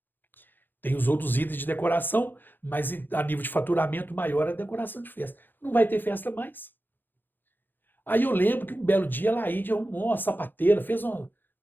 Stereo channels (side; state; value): right; late; 0.092 ms